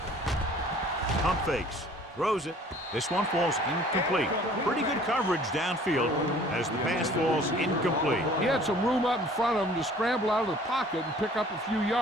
Pump fakes. Throws it. This one falls incomplete. Pretty good coverage downfield as the pass falls incomplete. He had some room up in front of him to scramble out of the pocket and pick up a few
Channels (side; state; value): both; normal; correlation 0.52